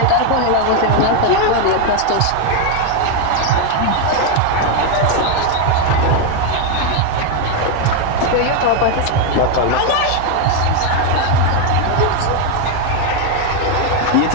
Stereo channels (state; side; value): different; both; correlation 0.01